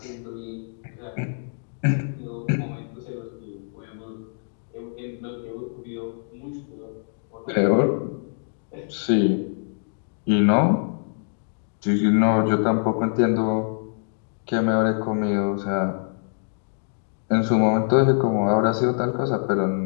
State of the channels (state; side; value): silent; right; digital silence